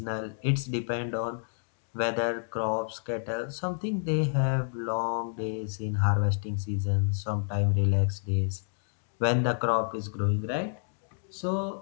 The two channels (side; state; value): right; silent; digital silence